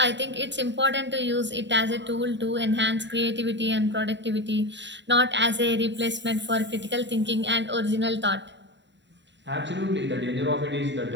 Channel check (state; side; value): late; left; 0.52 ms